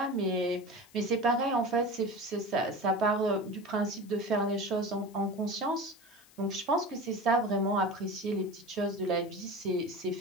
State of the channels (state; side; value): noise; left; hiss, 26 dB below the sound